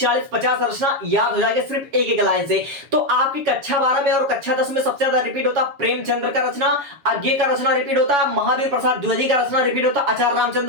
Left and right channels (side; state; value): left; late; 7.1 ms